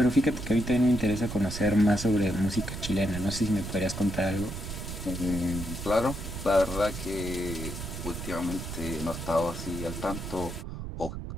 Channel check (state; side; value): noise; right; rumble, 7 dB below the sound